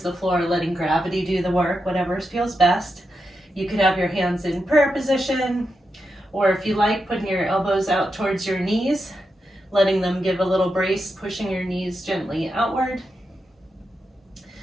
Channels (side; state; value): both; normal; correlation 0.86